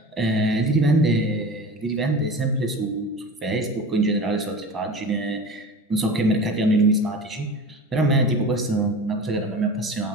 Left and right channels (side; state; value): both; normal; correlation 0.34